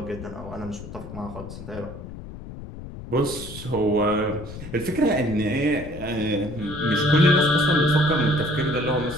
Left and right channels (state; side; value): noise; left; rumble, 12 dB below the sound